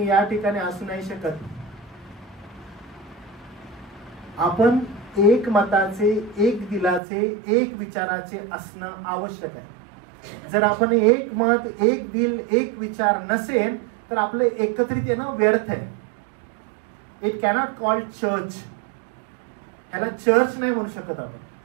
या ठिकाणी असू नाही शकत. आपण एक मताचे, एक दिलाचे, एक विचाराचे असणं आवश्यक आहे. जर आपण एक मत, एक दिल, एक विचार नसेल तर आपलं एकत्रित येणं व्यर्थ आहे. It cannot called church. ह्याला चर्च नाही म्हणू शकत आपण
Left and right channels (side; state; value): left; drops out; at 7.0 s